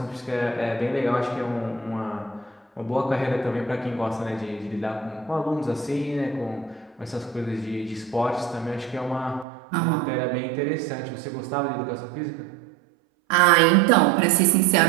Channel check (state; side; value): drops out; left; at 9.5 s